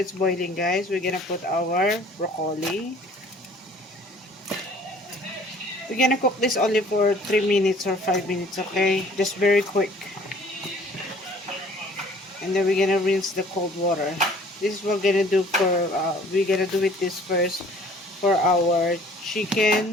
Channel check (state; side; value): normal; both; correlation 0.53